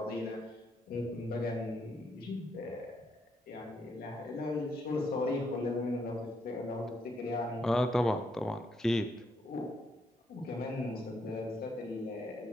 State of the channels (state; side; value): normal; both; correlation 0.76